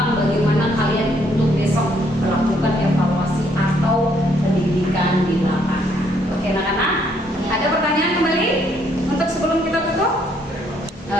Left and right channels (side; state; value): both; normal; correlation 0.69